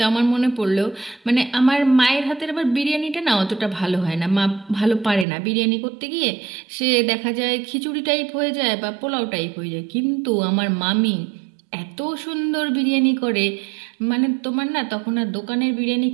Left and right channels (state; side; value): drops out; left; at 5.2 s